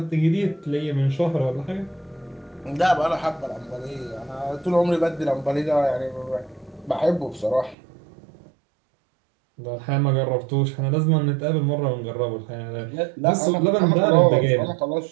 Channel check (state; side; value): drops out; left; at 7.8 s